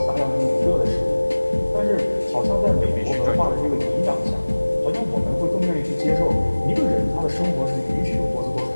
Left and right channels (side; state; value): both; inverted; correlation -1.00